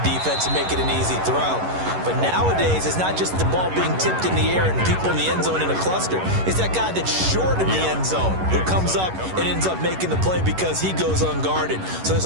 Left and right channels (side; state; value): left; late; 11 ms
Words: and make it an easy throw. But nowadays, it's not just the ball being tipped in the air and people in the end zone in a cluster. It's that guy that's short in the end zone who comes up and ends up making the play because he goes unguarded. So there's